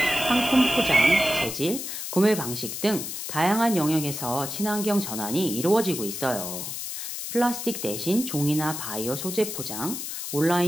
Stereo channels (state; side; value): noise; left; hiss, 6 dB below the sound